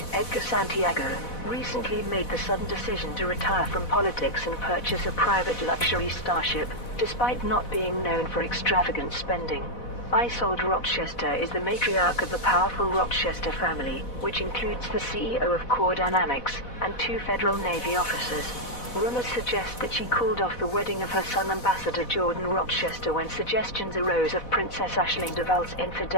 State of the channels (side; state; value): right; late; 4.1 ms